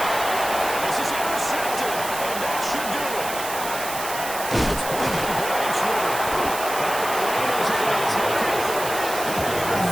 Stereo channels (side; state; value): right; noise; hiss, 8 dB below the sound